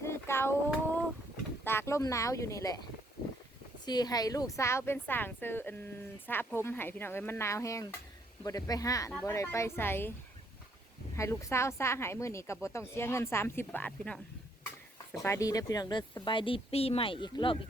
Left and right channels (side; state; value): both; normal; correlation 0.69